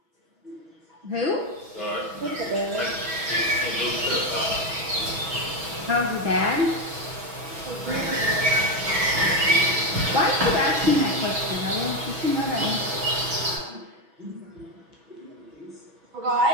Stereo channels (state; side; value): late; left; 6.1 ms